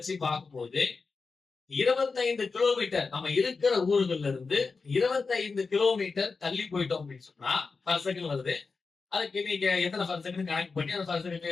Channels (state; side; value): quieter; right; 4.5 dB